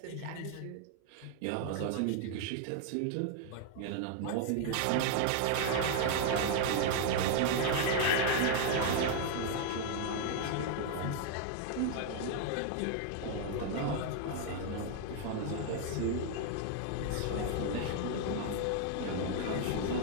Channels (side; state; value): both; different; correlation 0.00